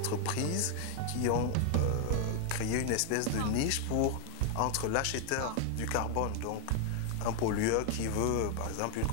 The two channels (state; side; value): different; both; correlation 0.00